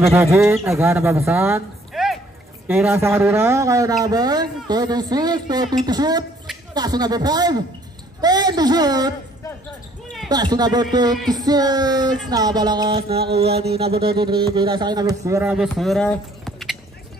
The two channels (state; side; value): normal; both; correlation 0.60